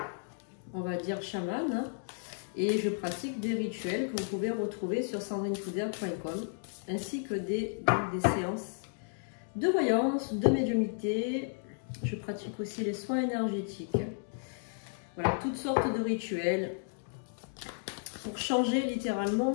on va dire, chamane, hein, et je pratique des rituels que vous pouvez retrouver sur sandrinefoudère.com, ainsi que des séances de voyance, de médiumnité. Je pratique aussi les soins énergétiques. Voilà, toutes sortes de rituels pour changer littéralement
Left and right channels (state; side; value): silent; right; digital silence